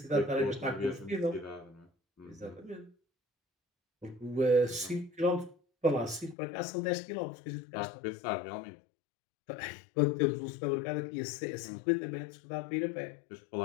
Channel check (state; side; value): drops out; right; at 6.4 s